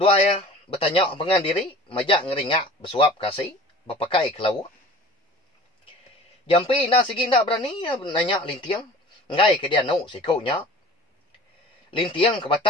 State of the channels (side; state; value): both; normal; correlation 0.43